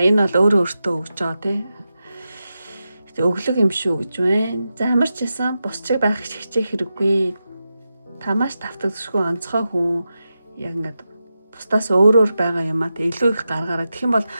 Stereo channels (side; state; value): both; inverted; correlation -0.90